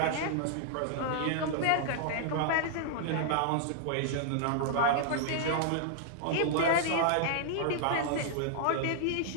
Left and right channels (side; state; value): both; different; correlation -0.01